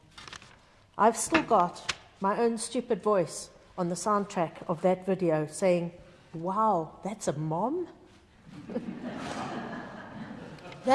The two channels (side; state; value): both; identical; correlation 1.00